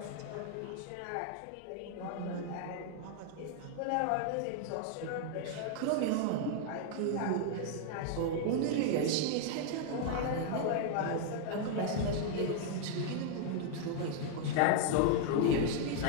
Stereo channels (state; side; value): different; both; correlation 0.00